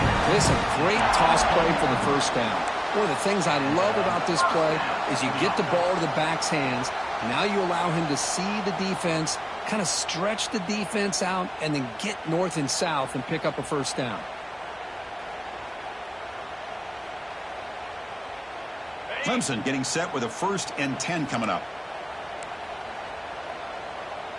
This is a great toss play for the first down. One of the things I love about this play is you get the ball to the back's hands. Now you allow him to see the defense, kind of stretch the defense out, and then get north and south and pick up a first down. Clemson getting set with a 1st and 10 coming up.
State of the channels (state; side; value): identical; both; correlation 1.00